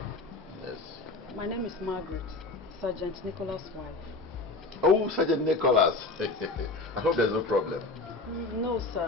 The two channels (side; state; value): right; quieter; 3.3 dB